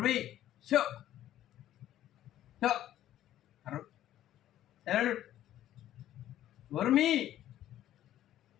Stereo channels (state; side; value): quieter; right; 12.7 dB